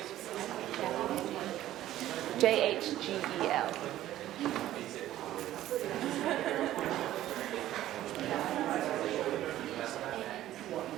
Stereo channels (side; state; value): left; quieter; 13.6 dB